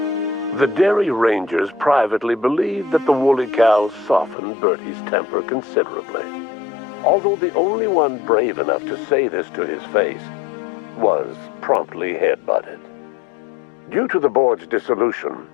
The Dairy Rangers privately believed that the woolly cows softened Bertie's temper considerably, although the only one brave enough to say this to his face was promptly headbutted. Due to the board's dissolution,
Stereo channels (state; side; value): drops out; right; at 4.4 s